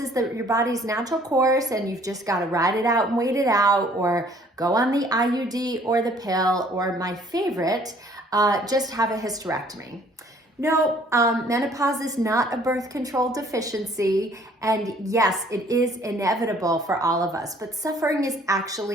your body's natural course, and you've just got to ride it out and wait it out, or go on the IUD or the pill, or my favorite, just have a hysterectomy. No, menopause is not a birth control deficiency, and yes, it is inevitable for all of us, but suffering is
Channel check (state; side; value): normal; both; correlation 0.58